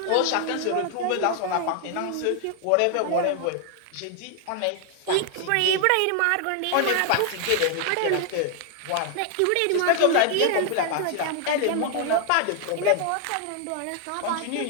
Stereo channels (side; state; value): both; different; correlation 0.00